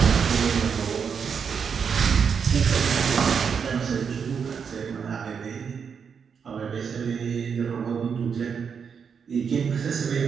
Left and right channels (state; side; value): quieter; left; 6.6 dB